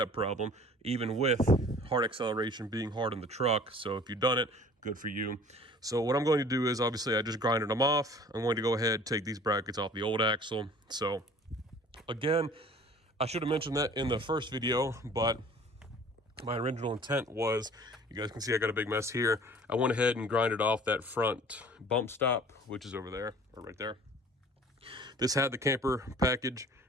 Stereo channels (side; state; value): both; normal; correlation 0.49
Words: problem, even with hard acceleration being hard in the truck. So if you've done it, good for you. So what I'm going to do is, obviously I just grinded them off. I'm going to go ahead, take these brackets off the old axle. So again, I should have mentioned that in the first video, but my original intent was, you guys can see I got a big mess here. I went ahead and grinded off that front bump stop, which is over there, or right there. This had the camper package,